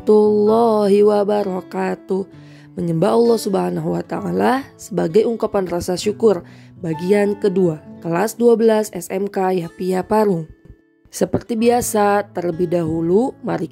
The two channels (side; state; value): both; identical; correlation 1.00